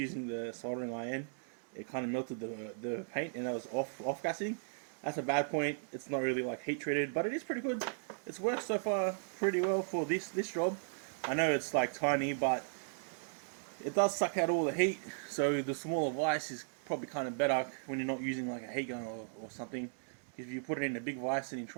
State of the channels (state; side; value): silent; left; digital silence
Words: the soldering iron, it kind of melted the paint, and I was off gassing. That's a bad point. It's not really like heat treated, but it is pretty good. It's worked so far pretty well for this job. I know it's like tiny, but it does suck out all the heat. So the smaller vise is probably kind of better when you're not using like a heat gun or something. If you put it in a big vise and you